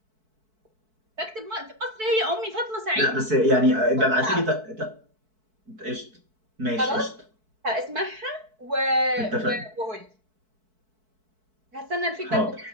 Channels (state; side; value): late; left; 4.6 ms